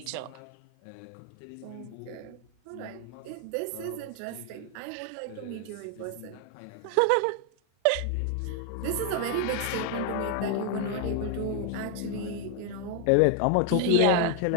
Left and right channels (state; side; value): different; both; correlation 0.00